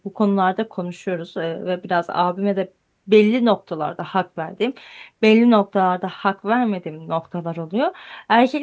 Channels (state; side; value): identical; both; correlation 1.00